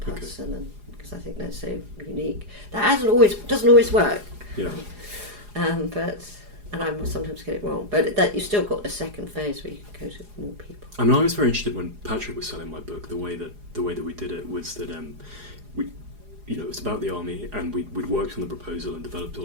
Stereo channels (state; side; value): late; left; 4.8 ms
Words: and because I think they're so unique. That doesn't always work. And I sometimes get it wrong, but that you've still got a second phase where you can go to more people. I mean, I was very interested when Patrick was selling my book. The way that we did it was that it was about the army, and we'd worked on the proposal and developed